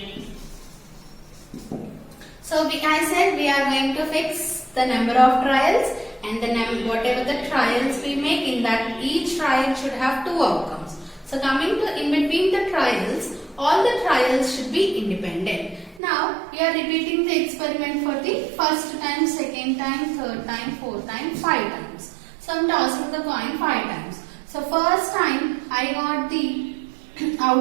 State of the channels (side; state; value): left; drops out; at 16.0 s